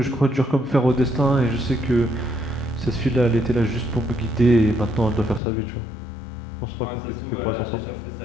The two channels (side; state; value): right; drops out; at 5.4 s